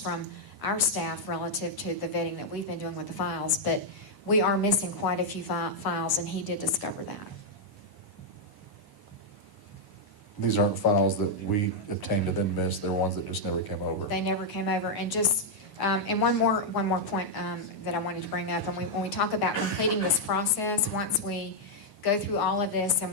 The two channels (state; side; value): late; right; 1.0 ms